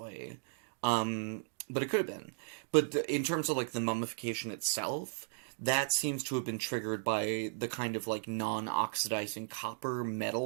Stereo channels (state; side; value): silent; left; digital silence